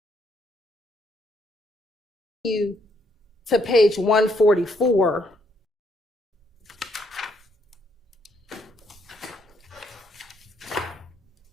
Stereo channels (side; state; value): both; normal; correlation 0.72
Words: to page 144,